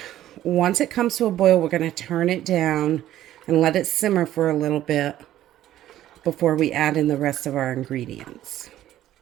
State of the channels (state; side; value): quieter; left; 13.1 dB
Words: once it comes to a boil, we're going to turn it down and let it simmer for a little bit before we add in the rest of our ingredients.